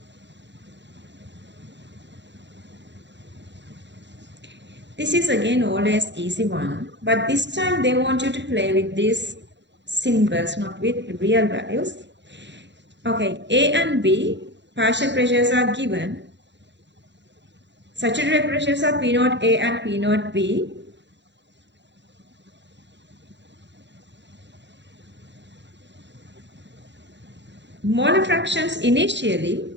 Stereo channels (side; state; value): left; late; 0.52 ms